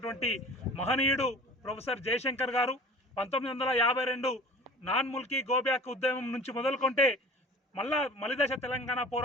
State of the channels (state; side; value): normal; both; correlation 0.41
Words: మహనీయుడు ప్రొఫెసర్ జయశంకర్ గారు 1952 నాన్ ముల్కీ గోబ్యాక్ ఉద్యమం నుంచి మొదలుకొంటే మలిదశ తెలంగాణ